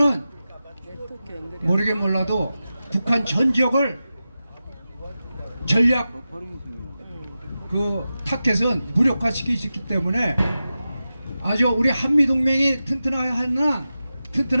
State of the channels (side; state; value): both; inverted; correlation -0.93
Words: 모르긴 몰라도 북한 전 지역을 전략 그 타켓은 무력화시킬 수 있기 때문에 아주 우리 한미동맹이